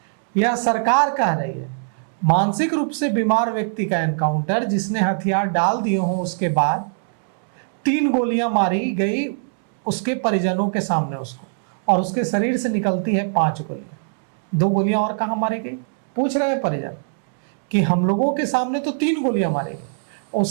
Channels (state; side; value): silent; left; 65 dB below the other